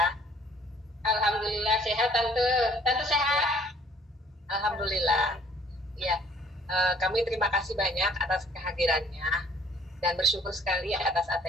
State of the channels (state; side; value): normal; both; correlation 0.57